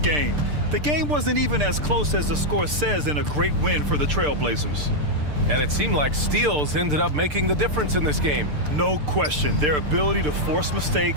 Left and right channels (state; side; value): late; left; 6.7 ms